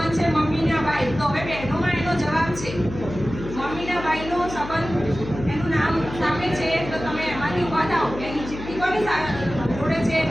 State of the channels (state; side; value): noise; left; hum, 10 dB below the sound